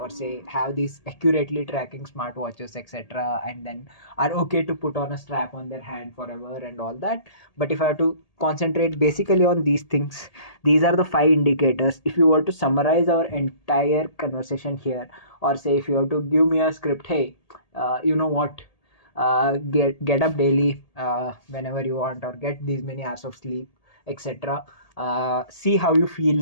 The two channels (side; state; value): right; late; 1.8 ms